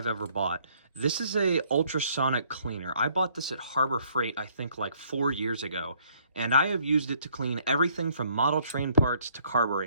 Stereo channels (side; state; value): both; inverted; correlation -0.65